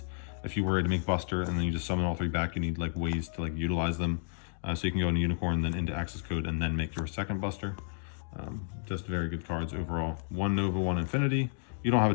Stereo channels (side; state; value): right; silent; digital silence